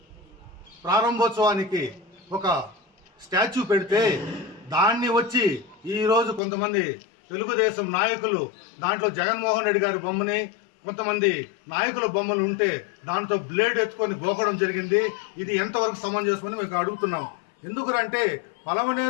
ప్రారంభోత్సవానికి ఒక స్టాచ్యూ పెడితే దాన్ని వచ్చి ఈరోజు కొంతమంది తెలుగుదేశం నాయకులు దాంట్లో జగన్మోహన్ రెడ్డి గారి బొమ్మని కొంతమంది నాయకుల బొమ్మలు ఉంటే దాంతో బ్లేడ్ ఎత్తుకొని గోకడం జరిగింది. ఇది ఎంతవరకు సమంజసమని మేము అడుగుతున్నాం. ఎందుకంటే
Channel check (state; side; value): drops out; right; at 6.4 s